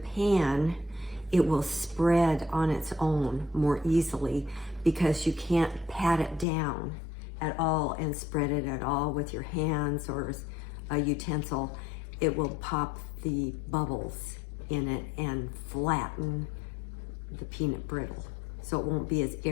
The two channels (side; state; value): right; drops out; at 6.5 s